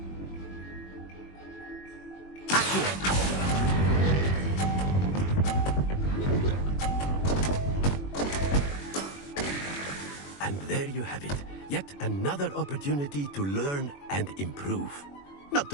And there you have it. Yet another opportunity to learn and improve. Not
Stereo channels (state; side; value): late; right; 21 ms